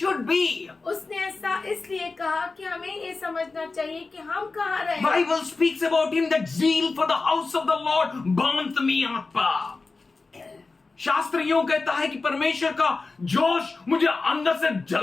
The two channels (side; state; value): right; quieter; 3.9 dB